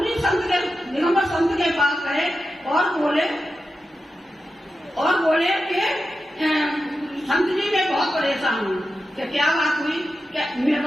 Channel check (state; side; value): normal; both; correlation 0.91